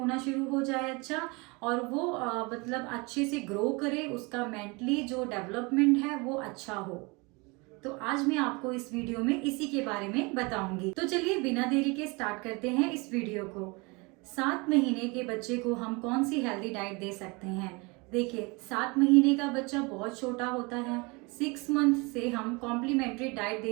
शुरू हो जाए अच्छा, और वो मतलब अच्छे से ग्रो करे, उसका मेंटली जो डेवलपमेंट है वो अच्छा हो। तो आज मैं आपको इस वीडियो में इसी के बारे में बताऊंगी। तो चलिए बिना देरी के स्टार्ट करते हैं इस वीडियो को। 7 महीने के बच्चे को हम कौन सी हेल्दी डाइट दे सकते हैं। देखिए, 7 महीने का बच्चा बहुत छोटा होता है। 6 मंथ से हम कॉम्प्लीमेंट्री डाइट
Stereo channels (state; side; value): quieter; left; 27.6 dB